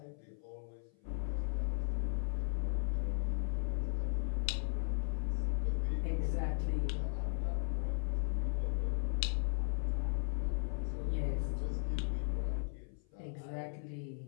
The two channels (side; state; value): right; silent; 53 dB below the other